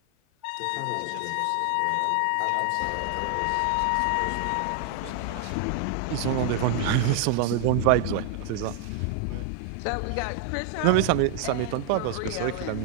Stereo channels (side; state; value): both; different; correlation 0.00